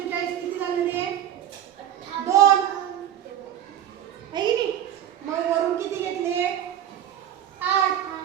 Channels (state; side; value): quieter; left; 10.7 dB